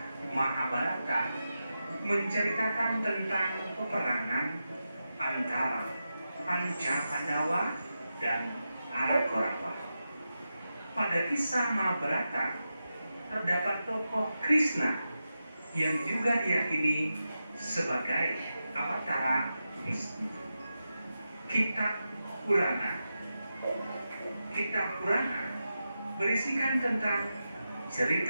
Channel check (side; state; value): both; inverted; correlation -0.90